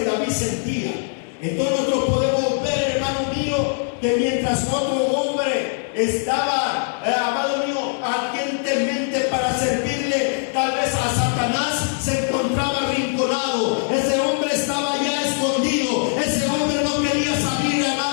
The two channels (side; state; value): right; silent; 65 dB below the other